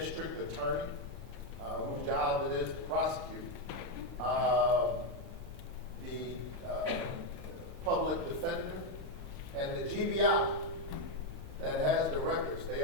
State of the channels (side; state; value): left; late; 1.1 ms